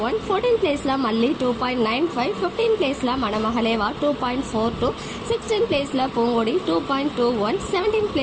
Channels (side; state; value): both; identical; correlation 1.00